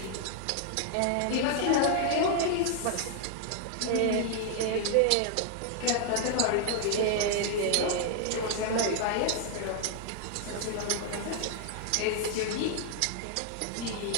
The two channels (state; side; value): different; both; correlation 0.00